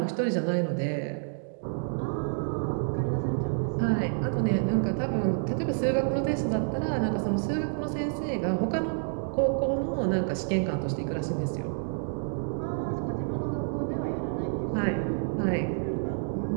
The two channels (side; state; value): left; silent; digital silence